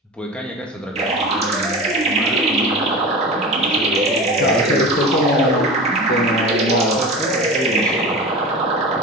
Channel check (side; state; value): both; normal; correlation 0.31